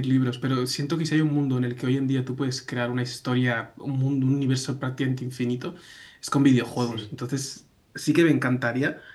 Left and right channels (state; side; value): identical; both; correlation 1.00